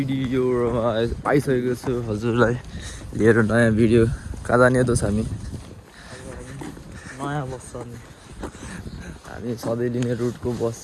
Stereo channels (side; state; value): both; identical; correlation 1.00